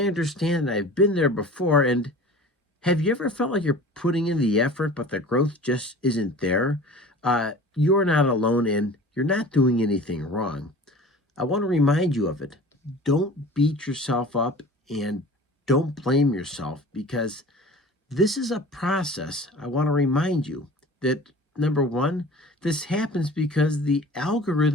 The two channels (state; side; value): normal; both; correlation 0.41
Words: understand. I've been there before. And have you ever felt like you're putting in the effort, but the growth just isn't there? You're not alone and you're not doing anything wrong. I want to remind you of it. Don't beat yourself up and don't blame yourself because this is a process. I want to remind you that number one, this happens because the